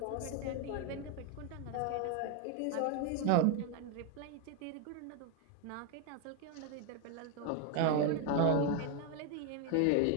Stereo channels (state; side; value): different; both; correlation 0.01